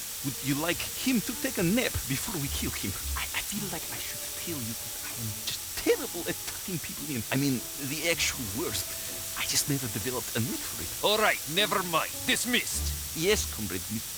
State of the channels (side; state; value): both; identical; correlation 1.00